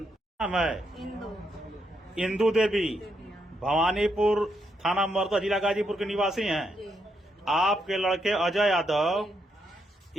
इंदू देवी भवानीपुर थाना मर्दा जिला गाजीपुर के निवासी हैं। आपके लड़के अजय यादव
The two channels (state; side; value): normal; both; correlation 0.79